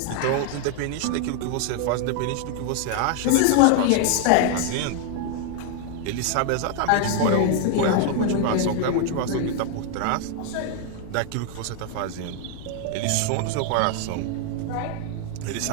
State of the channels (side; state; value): both; different; correlation 0.00